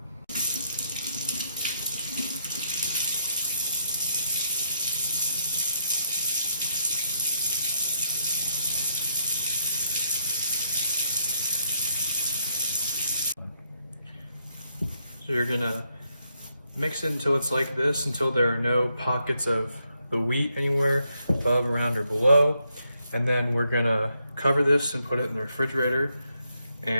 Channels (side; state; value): both; inverted; correlation -0.76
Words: So you're gonna mix it until it's like this, until there are no pockets of the wheat anywhere above, around, or below. And then we're gonna cover this and put it in the refrigerator.